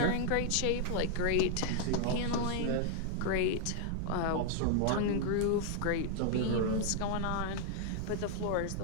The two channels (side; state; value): both; different; correlation 0.00